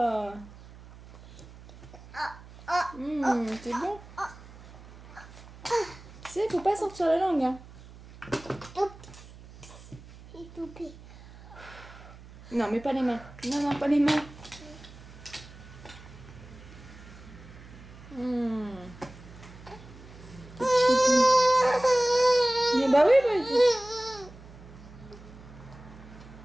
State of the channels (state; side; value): noise; right; hum, 19 dB below the sound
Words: C'est bon. Tu sais, faut pas sortir la langue, hein. C'est tout pire. Non, mais pas les mains. Non, pas les mains. Mais bah oui,